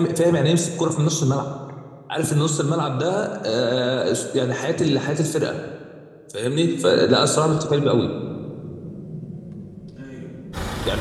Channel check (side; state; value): both; identical; correlation 1.00